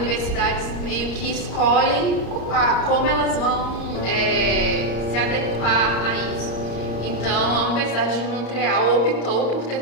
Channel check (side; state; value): right; late; 34 ms